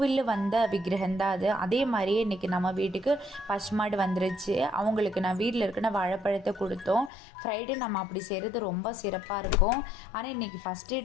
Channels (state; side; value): drops out; right; at 7.1 s